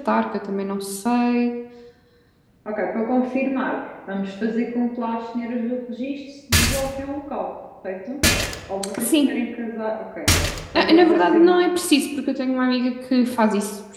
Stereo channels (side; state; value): both; identical; correlation 1.00